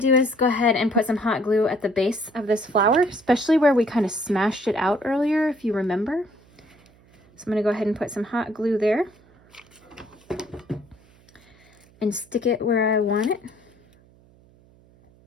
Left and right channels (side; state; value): right; noise; hum, 29 dB below the sound